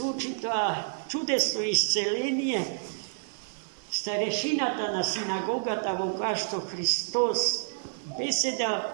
тоа чудесно исцеление, старешината на синагогата во која што Христос беседал,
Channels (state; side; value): silent; left; 59 dB below the other